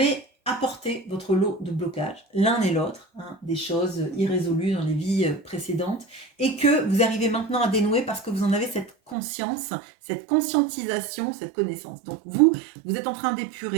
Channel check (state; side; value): drops out; left; at 9.2 s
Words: apporté votre lot de blocages, l'un et l'autre, hein, des choses irrésolues dans les vies précédentes, et que vous arrivez maintenant à dénouer parce que vous en avez cette conscience, cette conscientisation, cette connaissance. Donc vous êtes en train